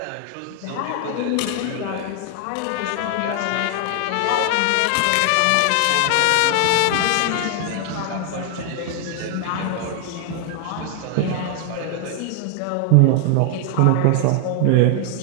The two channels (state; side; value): different; both; correlation 0.00